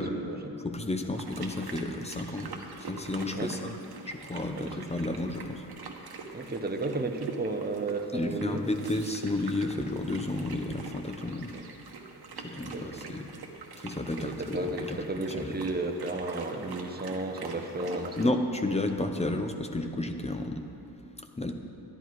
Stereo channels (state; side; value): normal; both; correlation 0.54